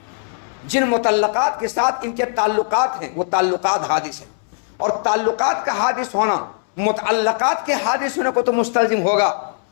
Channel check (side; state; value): right; silent; 66 dB below the other